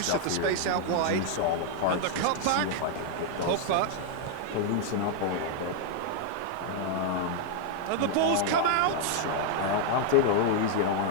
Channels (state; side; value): different; both; correlation 0.00